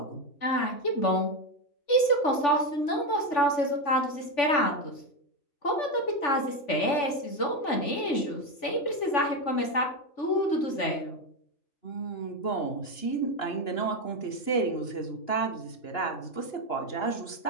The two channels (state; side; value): late; right; 3.5 ms